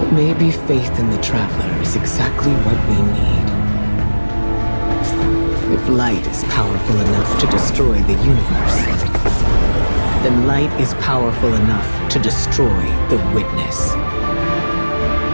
maybe faith in the Traveler is exactly what we need. If light is powerful enough to destroy the universe, then light is powerful enough to destroy the Witness.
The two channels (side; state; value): both; inverted; correlation -1.00